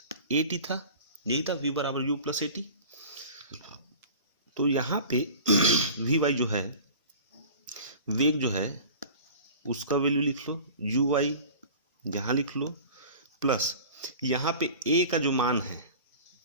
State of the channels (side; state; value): both; inverted; correlation -0.40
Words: ए टी था, यही था v बराबर u प्लस ए टी। तो यहाँ पे वी वाई जो है, वेग जो है उसका वैल्यू लिख लो, यू वाई यहाँ लिख लो, प्लस यहाँ पे ए का जो